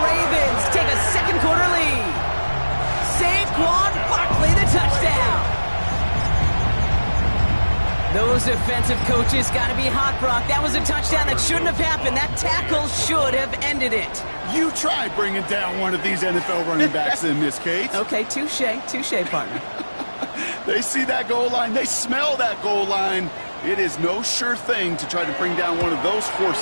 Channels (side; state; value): both; inverted; correlation -1.00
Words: take a second quarter lead. Saquon Barkley, the touchdown. Those defensive coaches got to be hot, Brock. That was a touchdown that shouldn't have happened. That tackle should have ended it. You try bringing down one of these NFL running backs in this case. Okay, touche, partner. They see that goal line. They smell that goal line. It is no sure thing to try to bring down one of those